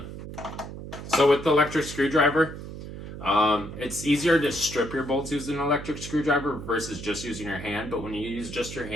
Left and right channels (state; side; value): noise; right; hum, 10 dB below the sound